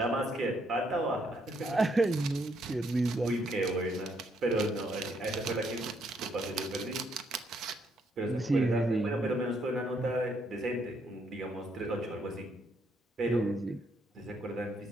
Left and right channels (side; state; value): both; normal; correlation 0.73